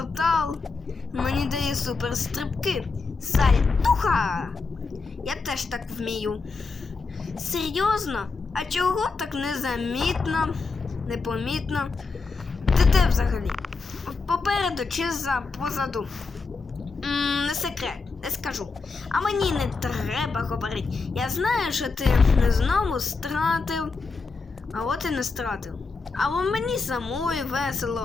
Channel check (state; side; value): quieter; right; 4.3 dB